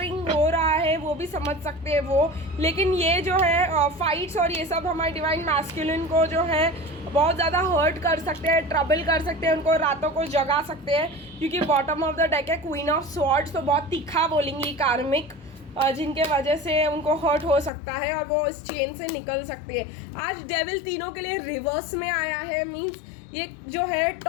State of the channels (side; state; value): right; drops out; at 17.7 s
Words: हो रहा है वो भी समझ सकते हैं वो। लेकिन ये जो है फाइट्स और ये सब हमारे डिवाइन मैस्कुलिन को जो है बहुत ज़्यादा हर्ट कर सकते हैं, ट्रबल कर सकते हैं, उनको रातों को जगा सकते हैं क्योंकि बॉटम ऑफ द डेक है क्वीन ऑफ स्वॉर्ड्स, तो बहुत तीखा बोलेंगी कार्मिक जिनके वजह से उनको हर्ट हो सकता है और वो इस चेन से निकल सकते हैं। आज डेविल तीनों के लिए रिवर्स में आया है, मीन्स ये जो है